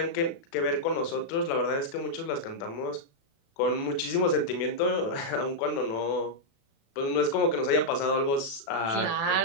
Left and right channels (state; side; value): late; right; 36 ms